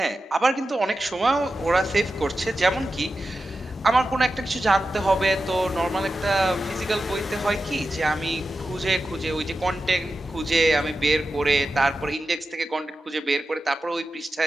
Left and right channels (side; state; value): both; normal; correlation 0.92